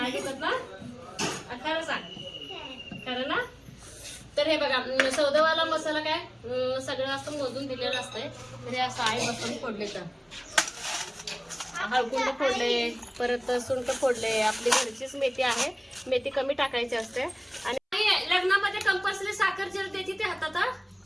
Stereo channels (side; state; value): both; identical; correlation 1.00